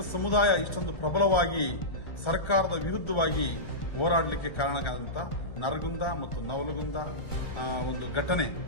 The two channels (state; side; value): late; right; 1.3 ms